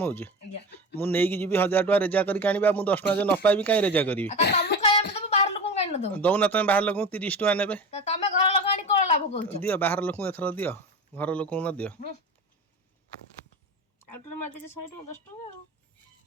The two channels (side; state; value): both; normal; correlation 0.28